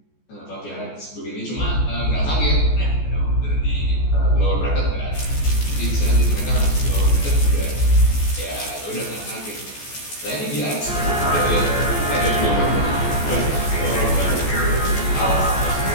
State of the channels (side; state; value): right; late; 14 ms